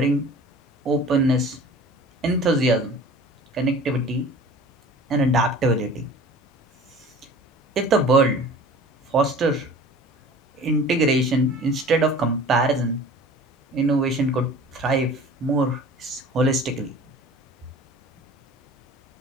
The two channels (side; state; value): both; normal; correlation 0.43